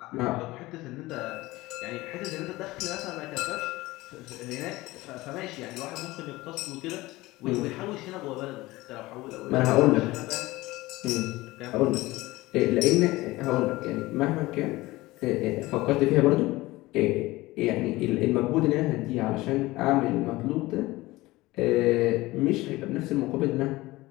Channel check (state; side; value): quieter; right; 19.3 dB